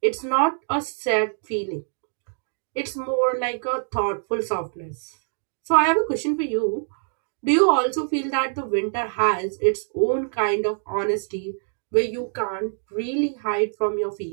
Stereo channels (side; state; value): left; silent; digital silence